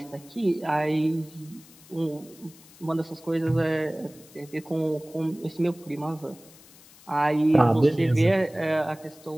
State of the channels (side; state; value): left; noise; hiss, 24 dB below the sound